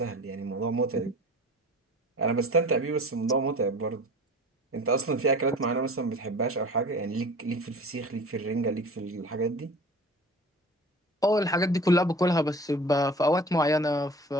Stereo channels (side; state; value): both; normal; correlation 0.41